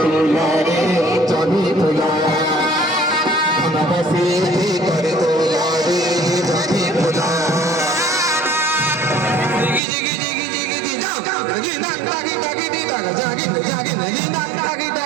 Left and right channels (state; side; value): drops out; left; at 9.8 s